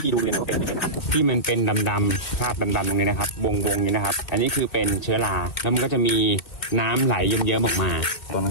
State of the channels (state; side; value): late; right; 2.2 ms